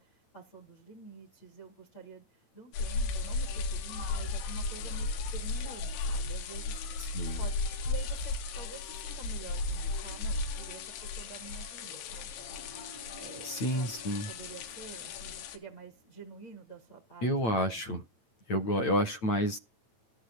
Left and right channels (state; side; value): late; right; 9.0 ms